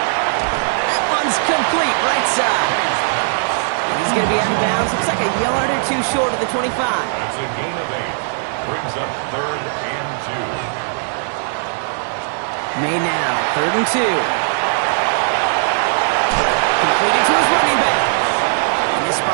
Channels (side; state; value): left; silent; 66 dB below the other